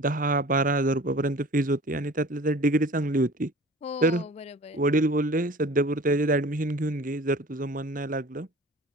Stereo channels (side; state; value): both; normal; correlation 0.42